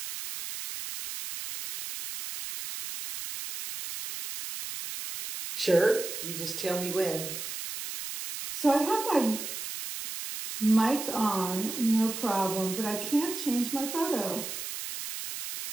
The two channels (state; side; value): noise; right; hiss, 7 dB below the sound